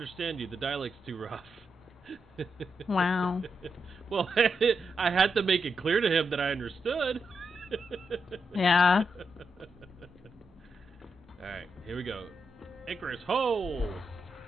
you. The dialect's too rough. Wow. Well, I had to make it clear to him that I understood. Yeah. Alright, here we go. Icarus, ho!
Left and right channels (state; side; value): normal; both; correlation 0.84